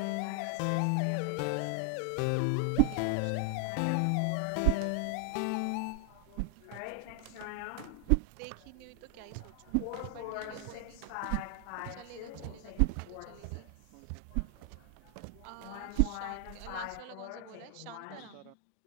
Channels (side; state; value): both; different; correlation 0.00